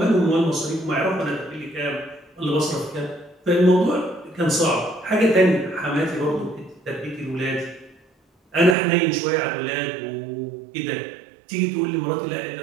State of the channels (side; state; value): left; drops out; at 8.8 s